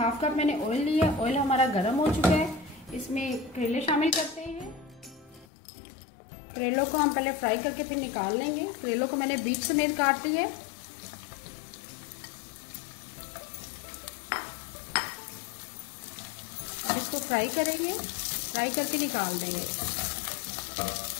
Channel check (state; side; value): drops out; right; at 5.5 s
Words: कप मैंने ऑयल लिया। ऑयल हमारा गर्म हो चुका है। इसमें करेले शामिल करते हैं। करेलों को हम पहले फ्राई करके फिर निकाल लेंगे। करेलों को मैंने बीच समेत काट ली है। अब इसको फ्राई करेंगे, फ्राई करके निकाल देंगे।